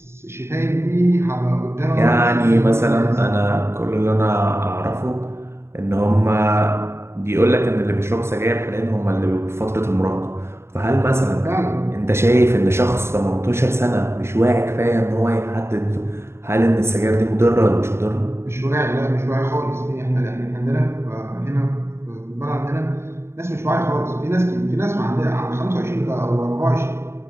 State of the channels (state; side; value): late; left; 0.12 ms